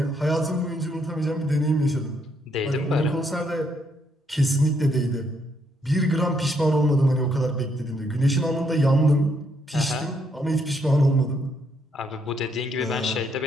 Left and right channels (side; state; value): both; normal; correlation 0.73